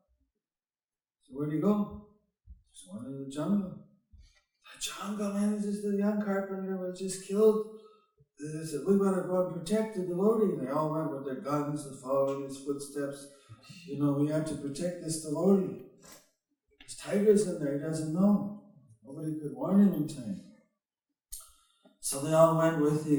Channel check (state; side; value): identical; both; correlation 1.00